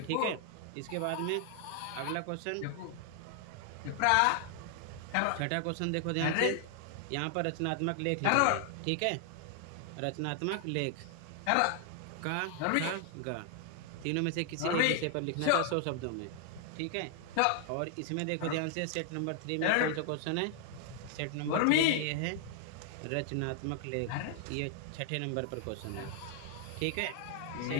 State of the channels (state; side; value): different; both; correlation 0.00